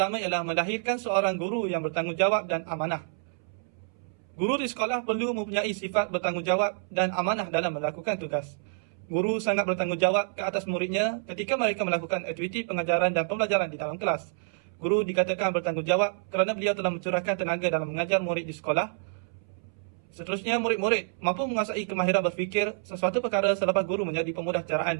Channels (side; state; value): left; silent; 59 dB below the other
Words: ialah melahirkan seorang guru yang bertanggungjawab dan amanah. Guru di sekolah perlu mempunyai sifat bertanggungjawab dan amanah dalam melakukan tugas. Guru sangat bertanggungjawab ke atas muridnya ketika mereka melakukan aktiviti pengajaran dan pembelajaran di dalam kelas. Guru dikatakan bertanggungjawab kerana beliau telah mencurahkan tenaga dalam mengajar murid di sekolah. Seterusnya, murid-murid mampu menguasai kemahiran berfikir sesuatu perkara selepas guru menjadi pemudah